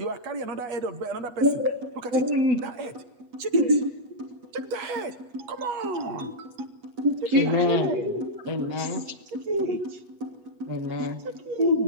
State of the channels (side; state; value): left; late; 8.3 ms